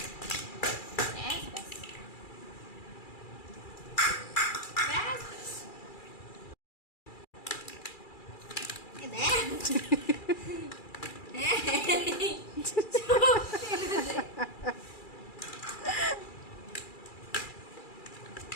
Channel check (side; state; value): right; late; 2.3 ms